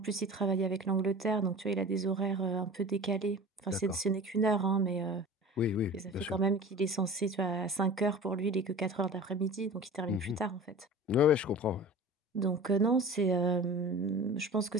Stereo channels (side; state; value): both; normal; correlation 0.38